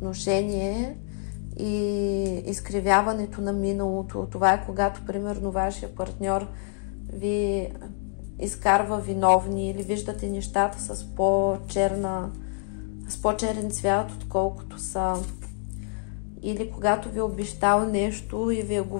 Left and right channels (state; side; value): silent; right; digital silence